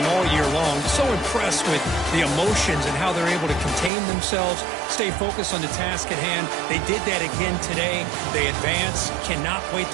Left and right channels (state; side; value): drops out; left; at 3.9 s